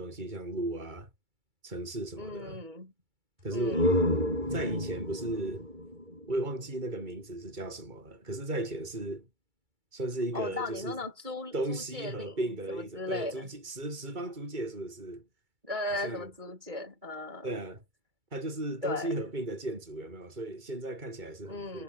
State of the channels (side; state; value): left; late; 2.3 ms